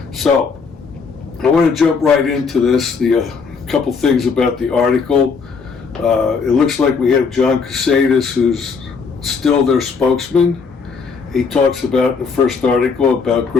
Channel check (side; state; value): right; quieter; 5.3 dB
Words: So I want to jump right into this. A couple things about the article. It looks like we have John Cusatus, who's still their spokesman. He talks about in the first article about